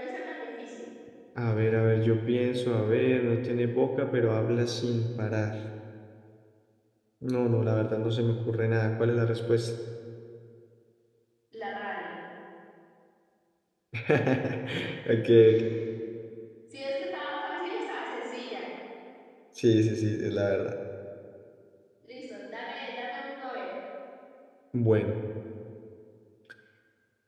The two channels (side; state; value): both; identical; correlation 1.00